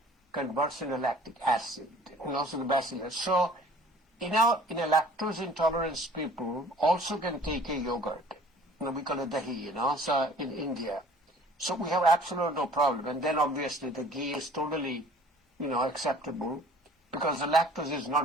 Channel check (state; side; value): normal; both; correlation 0.51